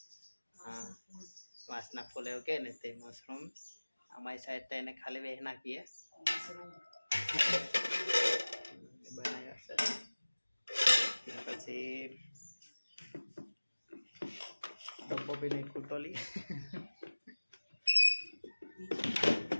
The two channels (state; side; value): inverted; both; correlation -1.00